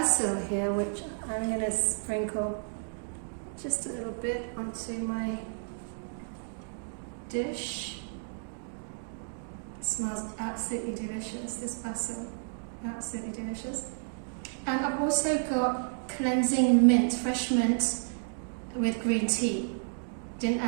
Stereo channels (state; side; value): silent; left; digital silence